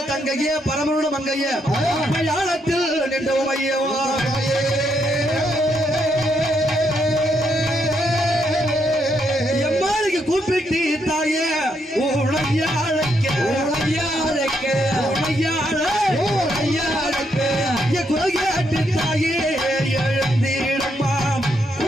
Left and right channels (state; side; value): normal; both; correlation 0.77